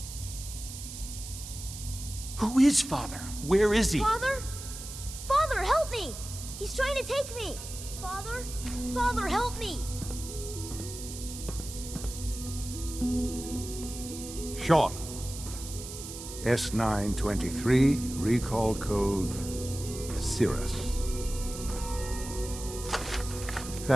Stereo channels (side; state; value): right; noise; hiss, 10 dB below the sound